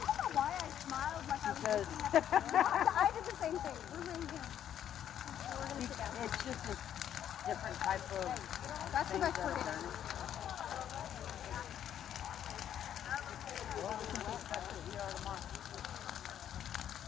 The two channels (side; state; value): right; quieter; 10.1 dB